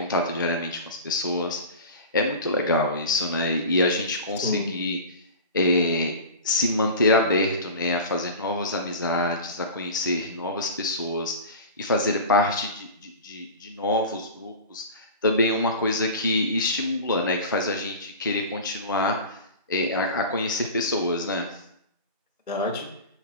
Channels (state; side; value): inverted; both; correlation -0.33